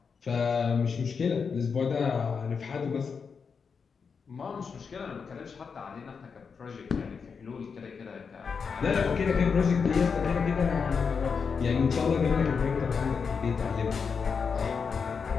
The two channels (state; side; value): quieter; right; 5.7 dB